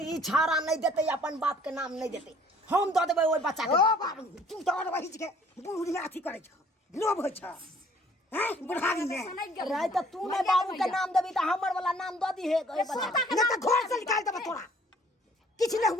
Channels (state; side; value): normal; both; correlation 0.57